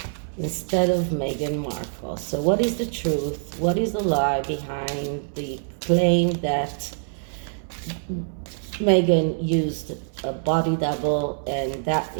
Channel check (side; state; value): left; silent; 62 dB below the other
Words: Instead of Meghan Markle. So what is the truth? What is the lie behind the claim that Meghan used a body double, and that